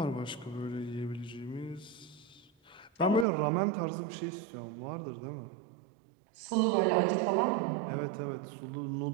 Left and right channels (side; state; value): left; drops out; at 3.2 s